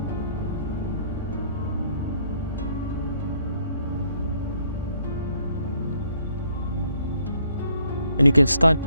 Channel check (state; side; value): inverted; both; correlation -0.66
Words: And you can start